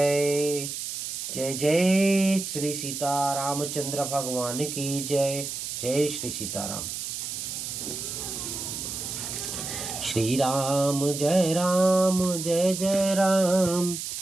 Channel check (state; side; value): noise; right; hiss, 5 dB below the sound